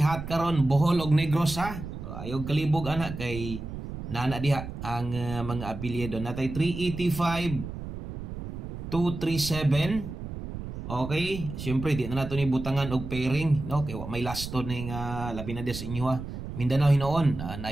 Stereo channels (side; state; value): right; noise; rumble, 8 dB below the sound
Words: hot karon Bohol og Negros ha. So, ayog kalibog anak kay nana diha ang mga apelyido natay 385 237 okay siyempre di na nato ni butangan og pairing no kay may lasto ning labi na des inyo ha Mindanao hinoon. Na